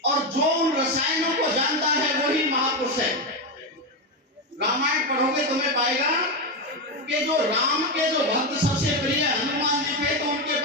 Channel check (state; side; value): normal; both; correlation 0.11